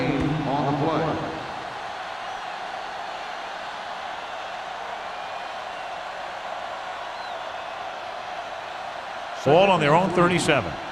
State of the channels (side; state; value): both; identical; correlation 1.00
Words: on the play. Ball on their own 37.